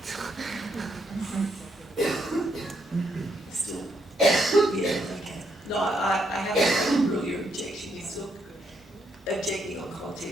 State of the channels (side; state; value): both; normal; correlation 0.76